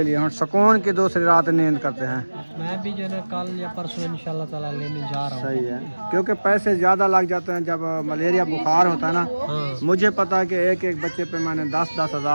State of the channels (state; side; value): inverted; both; correlation -1.00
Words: लिए। हम सुकून की दूसरी रात नींद करते हैं। मैं भी जो है ना कल या परसों इंशाल्लाह ताला लेने जा रहा हूँ। सही है, क्योंकि पैसे ज़्यादा लग जाते हैं जब मलेरिया बुखार होता है ना। हाँ। मुझे पता है कि एक एक बच्चे पे मैंने 10-10